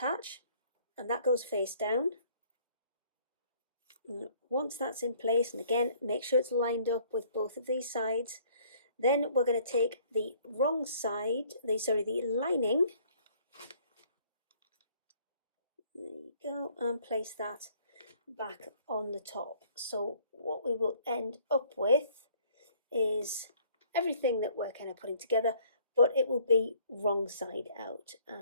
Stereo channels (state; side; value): inverted; both; correlation -0.59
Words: and that goes face down. And once that's in place, and again, make sure it's lined up with both of these sides, then we're going to take the wrong side, the lining, there you go, and place that back on the top. So what we will end up with is everything that we're kind of putting together, but it will be wrong side out.